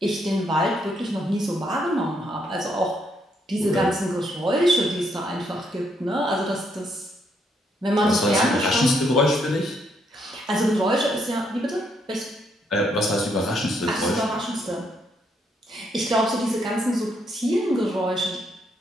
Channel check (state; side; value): normal; both; correlation 0.74